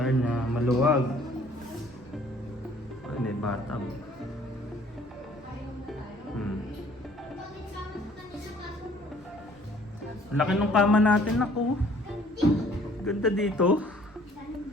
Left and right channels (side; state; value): both; normal; correlation 0.57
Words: na maluwag. Ay, may bathtub. Laki ng kama natin, ako. Ganda dito.